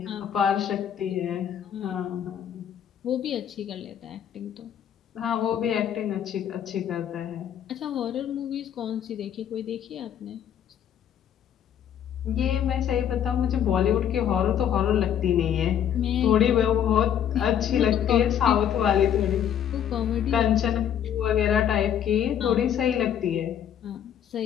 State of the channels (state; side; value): quieter; right; 9.4 dB